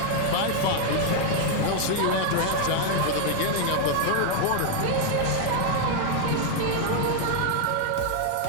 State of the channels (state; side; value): different; both; correlation 0.00